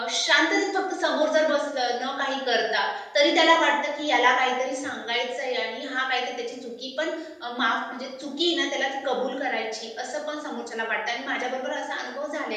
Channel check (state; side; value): identical; both; correlation 1.00